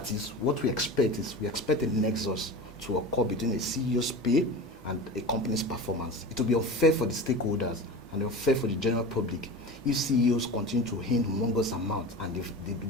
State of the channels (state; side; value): normal; both; correlation 0.31